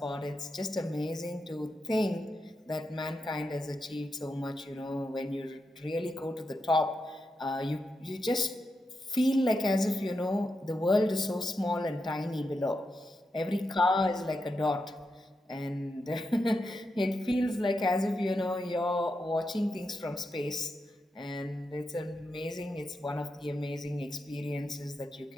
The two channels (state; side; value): normal; both; correlation 0.86